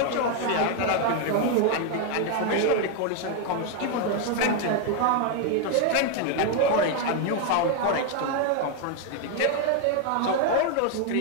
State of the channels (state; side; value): different; both; correlation 0.01